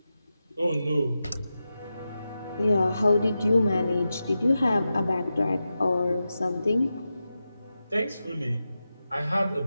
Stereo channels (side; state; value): both; inverted; correlation -0.91